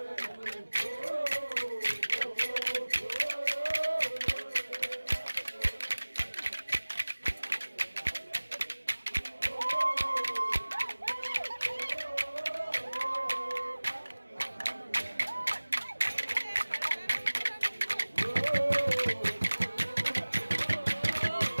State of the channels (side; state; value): both; inverted; correlation -1.00